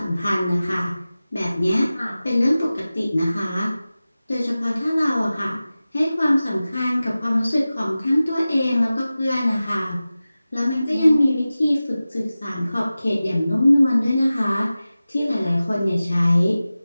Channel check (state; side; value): inverted; both; correlation -0.96